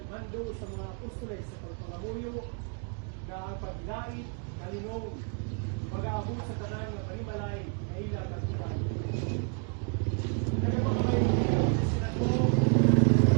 sa mga apostoles sa pagpangamuyo nga ang paglait kalinong mag-aabot sa tanan nga pangimalay nga ila magtuman nagpapangalayo kita sila ko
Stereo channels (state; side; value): quieter; left; 36.8 dB